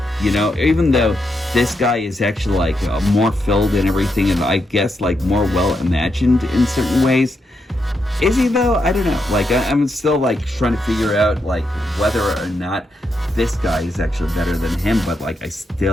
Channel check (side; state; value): both; normal; correlation 0.83